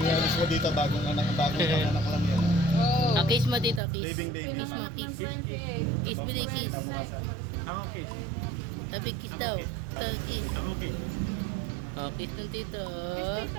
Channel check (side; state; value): left; drops out; at 3.8 s